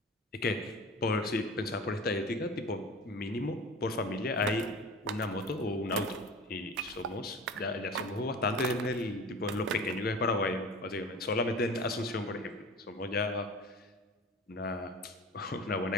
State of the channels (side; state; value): both; normal; correlation 0.37